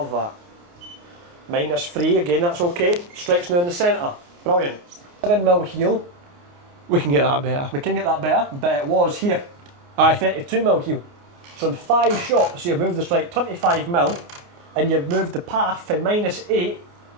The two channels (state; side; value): late; left; 29 ms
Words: that. -3, again, that's okay. Strikes now in the centre. Brilliant. 7mm heel. We can get that better. We can get that better, but it was here. Aye. 32mm heel. So in 5 shots, you've moved the strike 25mm, and you've moved the path from -8